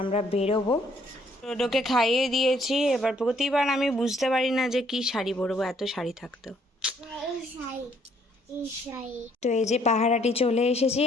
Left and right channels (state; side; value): normal; both; correlation 0.66